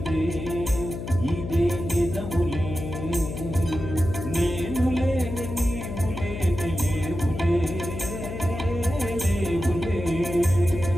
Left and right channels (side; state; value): left; noise; hum, 7 dB below the sound